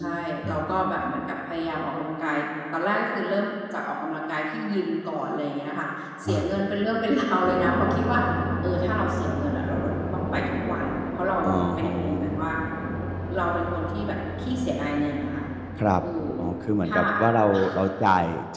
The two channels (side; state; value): both; identical; correlation 1.00